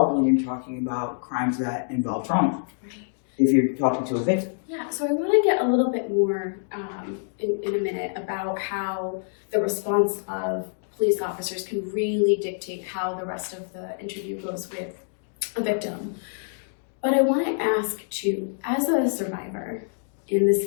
when you're talking about crimes that involve trauma. Right. If you're talking to a victim. Yeah, so I want to get a little bit more in a minute about how the response of police officers can really dictate how the rest of the interview goes with a victim. But I want to ask too, as a survivor in this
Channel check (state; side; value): silent; right; digital silence